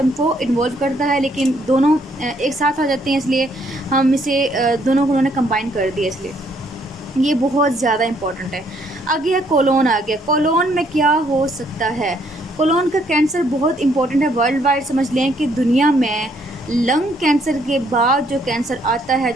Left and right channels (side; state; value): both; normal; correlation 0.68